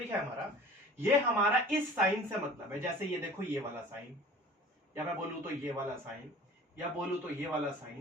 है हमारा, ये हमारा इस साइन से मतलब है। जैसे ये देखो ये वाला साइन, या मैं बोलूं तो ये वाला साइन, या बोलूं तो ये वाला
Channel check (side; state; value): both; normal; correlation 0.44